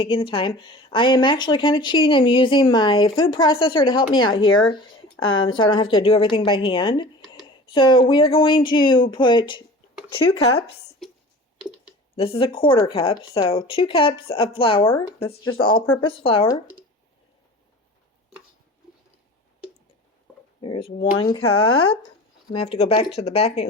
the time. I am actually kind of cheating. I'm using my food processor to help me out here. So I don't have to do everything by hand. So we are going to put 2 cups. This is a 1/4 cup. So 2 cups of flour. That's just all-purpose flour. There's 1 cup. I'm going to have to go back to the back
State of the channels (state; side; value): normal; both; correlation 0.40